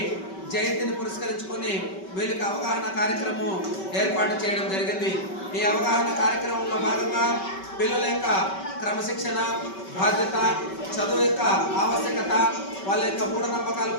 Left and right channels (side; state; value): right; late; 5.2 ms